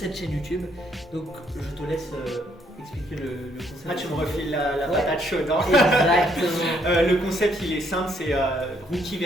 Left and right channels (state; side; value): normal; both; correlation 0.70